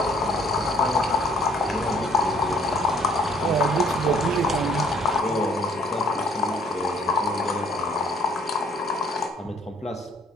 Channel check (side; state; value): both; normal; correlation 0.60